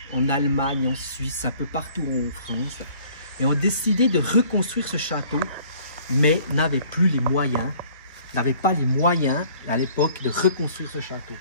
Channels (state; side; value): inverted; both; correlation -0.55